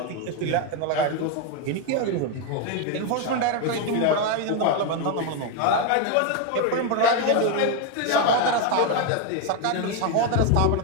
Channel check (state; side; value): different; both; correlation 0.01